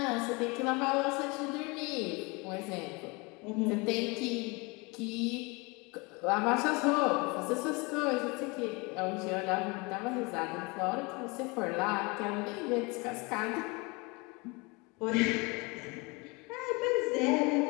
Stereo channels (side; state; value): right; quieter; 27.4 dB